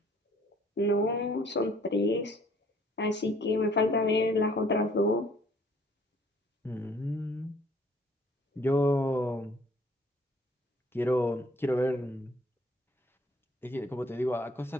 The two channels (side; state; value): both; normal; correlation 0.59